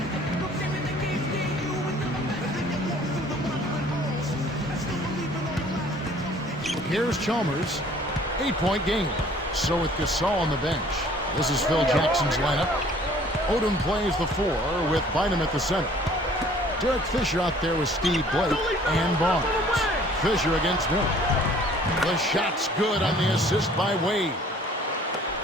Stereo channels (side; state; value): both; normal; correlation 0.54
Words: Here's Chalmers. 8-point game. So with Gasol on the bench. This is Phil Jackson's lineup. Odom plays the 4 with Bynum at the center. Derek Fisher out there with Steve Blake and Barnes. Fisher against Miller. The shot's good on the assist by Wade.